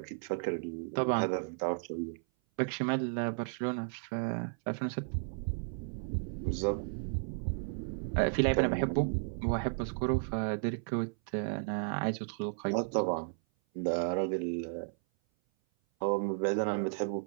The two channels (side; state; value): left; silent; 55 dB below the other